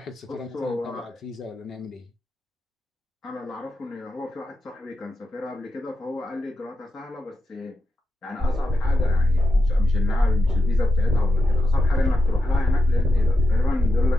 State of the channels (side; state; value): both; normal; correlation 0.87